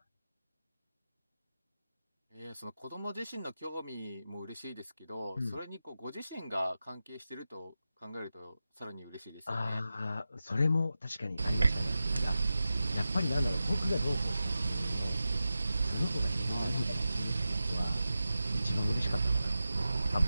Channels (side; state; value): both; inverted; correlation -0.92